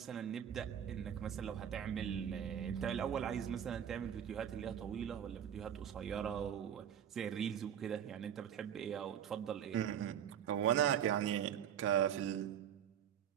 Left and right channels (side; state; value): left; quieter; 9.3 dB